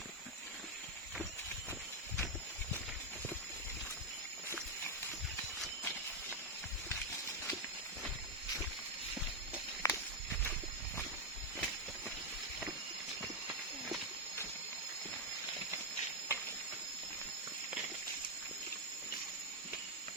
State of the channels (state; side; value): normal; both; correlation 0.03